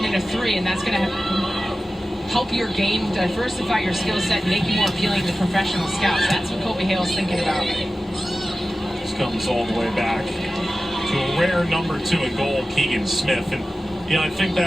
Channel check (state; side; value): normal; both; correlation 0.95